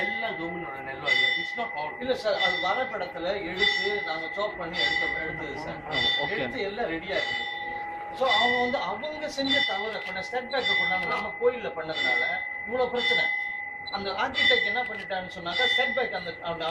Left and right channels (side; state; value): both; identical; correlation 1.00